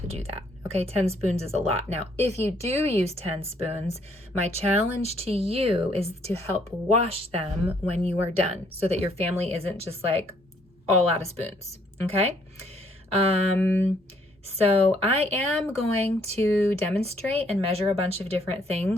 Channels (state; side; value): normal; both; correlation 0.67